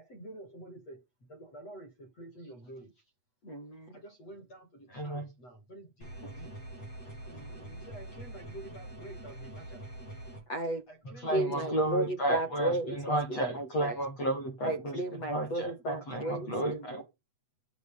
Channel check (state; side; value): late; right; 8.1 ms